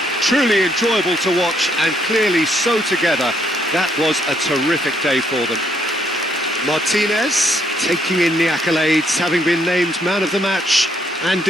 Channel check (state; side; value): normal; both; correlation 0.71